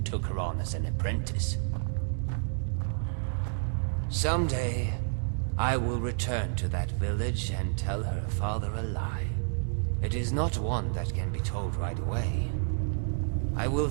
took her on as an apprentice. Someday, I will return to that village and tell her father a lie. It is not one that can be told right away. I will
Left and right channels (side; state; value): left; silent; digital silence